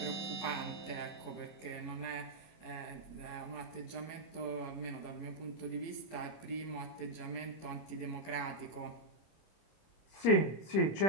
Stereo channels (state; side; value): late; right; 25 ms